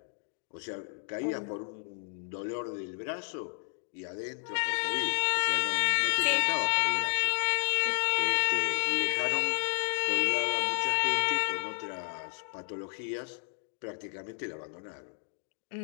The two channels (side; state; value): right; silent; digital silence